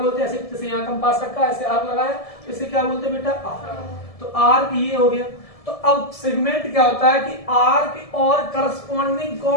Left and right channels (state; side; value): late; right; 1.7 ms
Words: हैं? ऐसे जैसे यहाँ कंपास रखा, ऐसे आर्क लगाया, तो इसे क्या बोलते हैं बेटा? आर्क। तो आर्क ये हो गया। तो अब सेगमेंट क्या होता है कि आर्क और करस्पॉन्डिंग